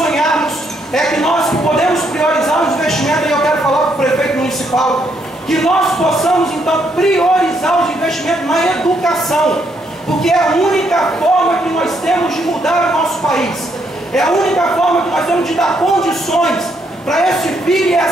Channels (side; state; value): both; normal; correlation 0.74